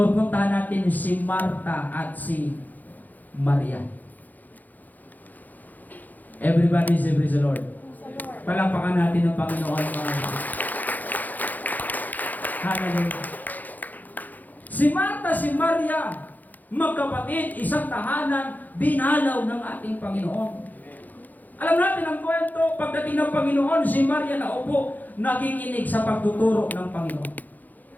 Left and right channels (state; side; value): late; right; 0.083 ms